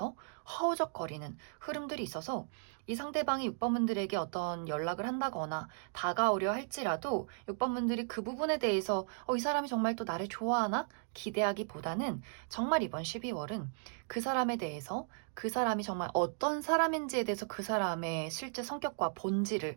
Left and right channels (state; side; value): silent; left; digital silence